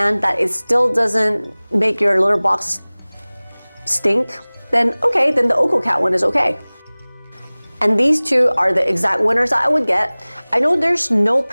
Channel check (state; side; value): inverted; both; correlation -1.00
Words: that it still doesn't make your litter box stink, then okay, then the OkoCat one is okay. And these two are the exact winners that I would get. I know there's no